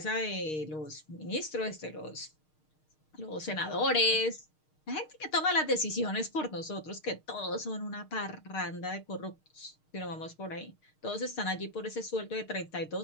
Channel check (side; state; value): right; late; 6.5 ms